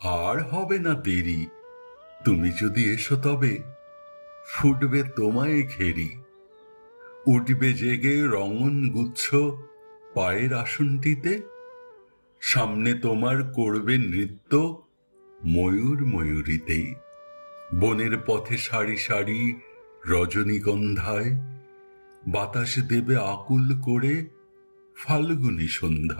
আর হবে না দেরি। তুমি যদি এসো তবে ফুটবে তোমায় ঘেরি। উঠবে জেগে রঙন গুচ্ছ পায়ের আসনটিতে। সামনে তোমার করবে নৃত্য ময়ূর ময়ূরীতে। বনের পথে সারি সারি রজনীগন্ধায় বাতাস দেবে আকুল করে ফাল্গুনী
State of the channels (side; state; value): both; inverted; correlation -1.00